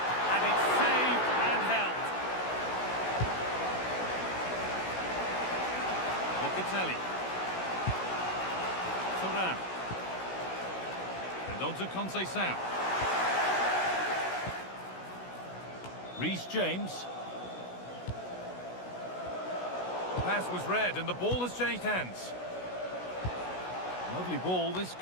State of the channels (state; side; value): late; right; 16 ms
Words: And it's saved and held. Locatelli. Thuram. And on to Conceição. Reece James. The pass was read and the ball has changed hands. Lovely ball, this